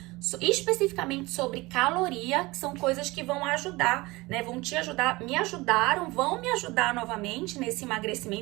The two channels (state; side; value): quieter; left; 21.7 dB